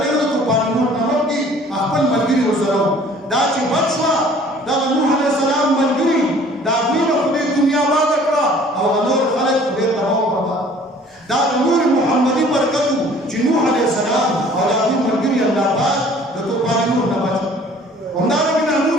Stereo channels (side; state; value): both; normal; correlation 0.52